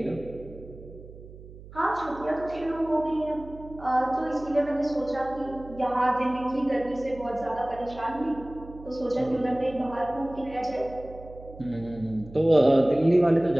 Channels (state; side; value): noise; right; hum, 17 dB below the sound